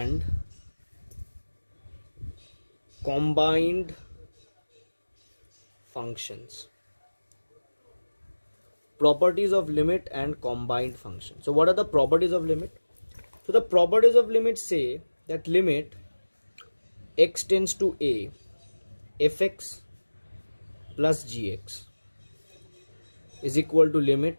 combined functions. Properties of limit and combined function. So what are the properties of limit? So the properties of limit say that limit x tends to a fx plus gx is equal to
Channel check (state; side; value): inverted; both; correlation -1.00